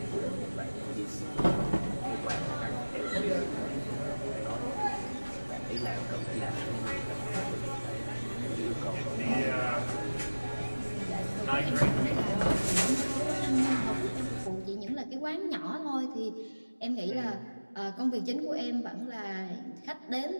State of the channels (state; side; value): inverted; both; correlation -1.00